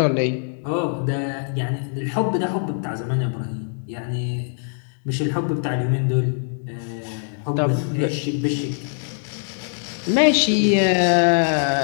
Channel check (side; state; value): right; silent; digital silence